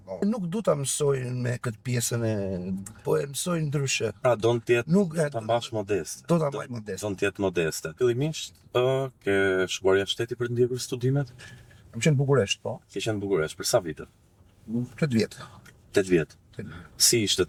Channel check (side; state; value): both; identical; correlation 1.00